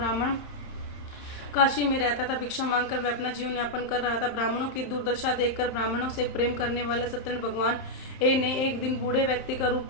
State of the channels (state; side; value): late; right; 31 ms